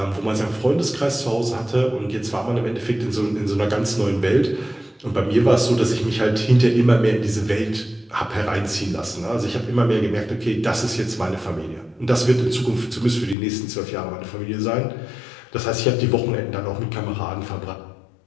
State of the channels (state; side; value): drops out; right; at 13.4 s